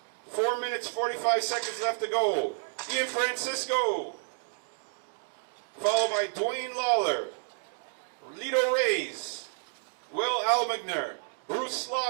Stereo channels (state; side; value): silent; left; digital silence